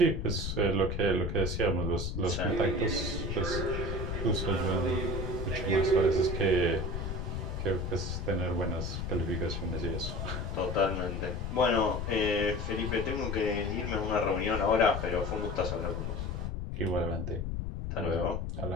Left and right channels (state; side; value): noise; left; rumble, 3 dB below the sound